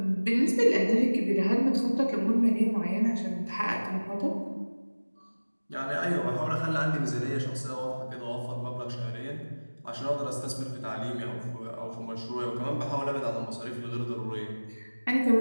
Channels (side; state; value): both; inverted; correlation -1.00